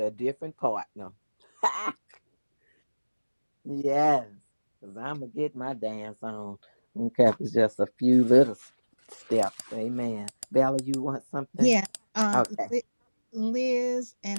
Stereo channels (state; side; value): inverted; both; correlation -1.00